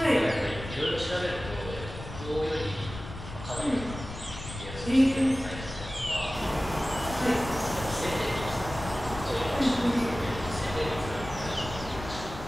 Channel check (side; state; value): left; noise; rumble, 11 dB below the sound